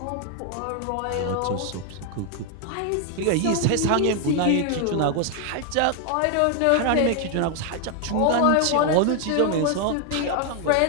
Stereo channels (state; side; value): different; both; correlation 0.01